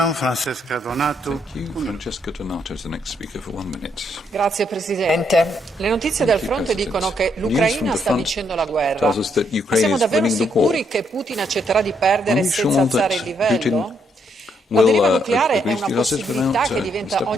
Francesca Donato is the next speaker for 1 minute. Grazie Presidente. Le notizie dal fronte dicono che l'Ucraina sta vincendo la guerra. Ma siamo davvero sicuri che Putin accetterà di perdere senza alzare il livello? La deriva nucleare è una possibilità che diventa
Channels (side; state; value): both; normal; correlation 0.74